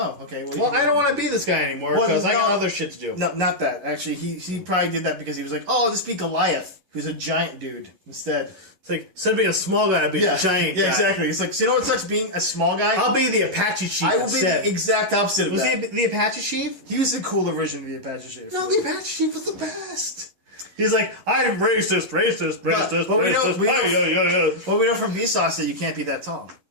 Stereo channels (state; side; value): late; left; 11 ms